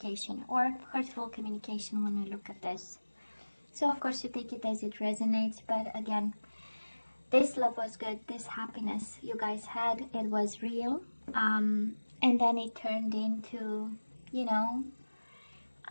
or hurtful communication when we look at this. So of course you take it as it resonates, but again, this love was good, this happiness you guys had, it was real, and then it turned into, you know,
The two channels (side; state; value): both; inverted; correlation -1.00